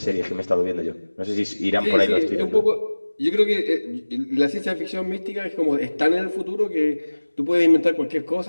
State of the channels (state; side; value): inverted; both; correlation -1.00